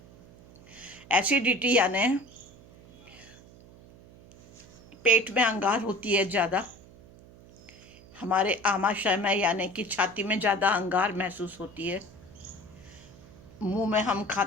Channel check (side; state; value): right; noise; hum, 22 dB below the sound